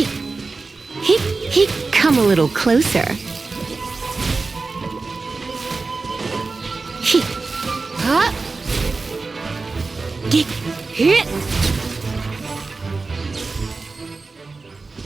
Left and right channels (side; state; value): left; quieter; 3.9 dB